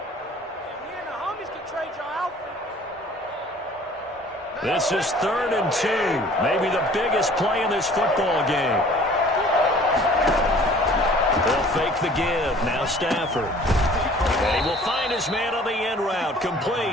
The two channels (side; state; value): both; normal; correlation 0.51